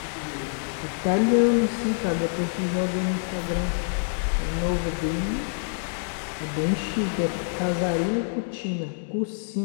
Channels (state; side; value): silent; right; digital silence